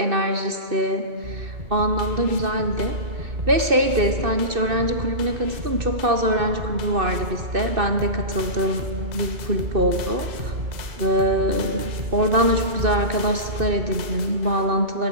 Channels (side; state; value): left; late; 2.6 ms